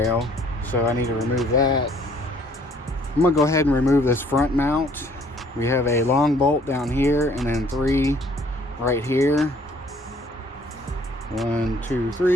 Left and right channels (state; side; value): normal; both; correlation 0.60